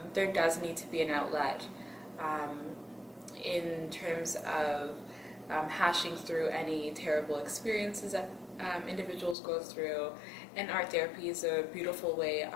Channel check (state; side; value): drops out; right; at 9.3 s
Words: there does need to be an outlet in terms of hashing through any terrible experiences that individuals go through. And art therapy is a beautiful way